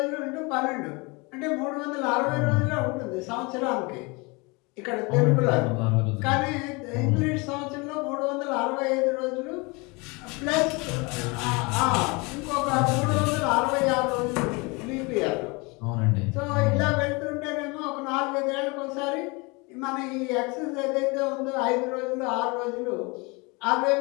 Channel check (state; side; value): quieter; right; 27.6 dB